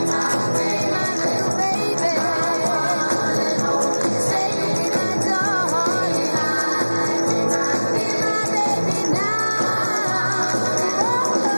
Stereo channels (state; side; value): inverted; both; correlation -1.00